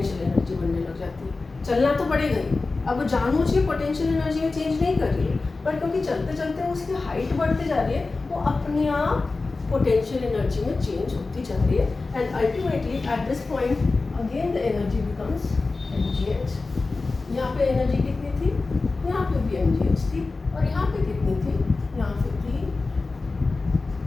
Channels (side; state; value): right; quieter; 3.7 dB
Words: एनर्जी बनने लग जाती है। चलना तो पड़ेगा ही। अब वो जानबूझ के पोटेंशियल एनर्जी में चेंज नहीं कर रही है, पर क्योंकि चलते चलते उसकी हाइट बढ़ती जा रही है, वो अपने आप पोटेंशियल एनर्जी में चेंज होती जा रही है। And ultimately at this point again the energy becomes mgh। यहाँ पे एनर्जी कितनी थी, यहाँ पे भी mgh थी, और यहाँ पे कितनी थी, यहाँ पे थी